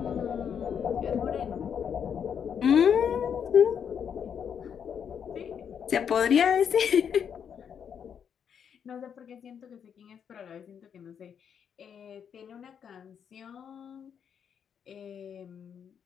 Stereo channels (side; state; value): right; quieter; 7.8 dB